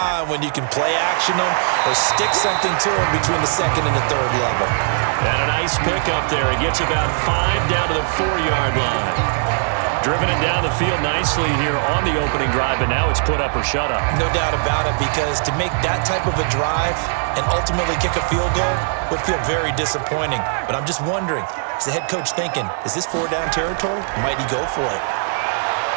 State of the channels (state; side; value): silent; left; digital silence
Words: when you can play action them or stick something to them between the 2nd and the 3rd level. And a nice pickup there. It gets about 5 down to the 4-yard line. Driven it down the field nicely here on the opening drive, and now it's put up or shut up. No doubt about it, because to make that type of a drive and ultimately kick a field goal would feel very disappointing. But I'm just wondering, is the head coach thinking, is this 4-down territory? Might he go for it?